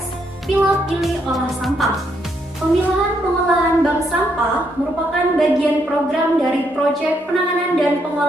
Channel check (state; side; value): normal; both; correlation 0.75